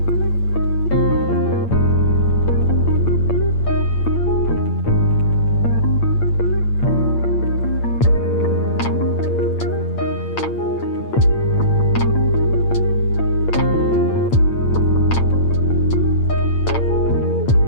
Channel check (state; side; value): late; right; 8.8 ms